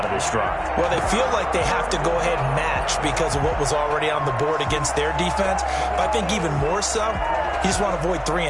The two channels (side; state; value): both; identical; correlation 1.00